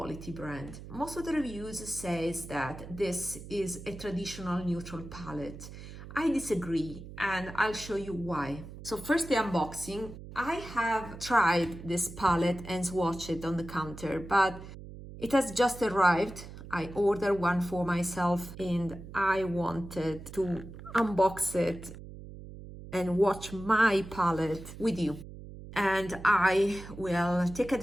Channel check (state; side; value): noise; right; hum, 13 dB below the sound